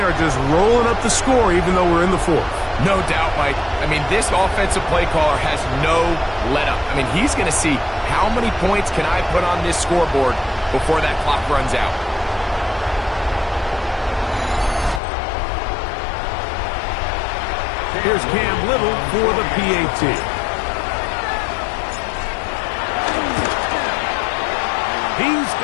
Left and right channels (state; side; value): drops out; right; at 15.0 s